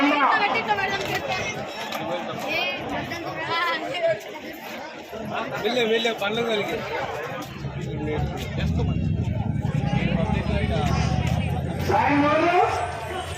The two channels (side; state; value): both; identical; correlation 1.00